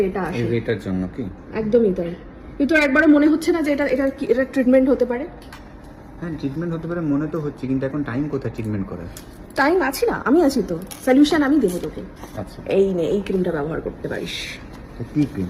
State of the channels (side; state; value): both; identical; correlation 1.00